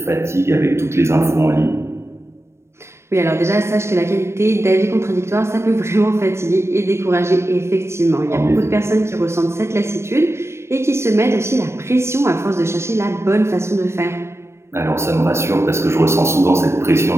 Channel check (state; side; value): late; left; 0.13 ms